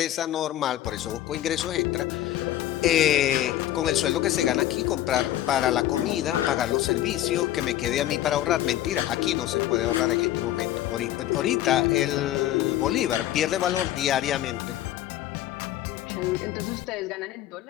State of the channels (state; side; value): quieter; right; 13.3 dB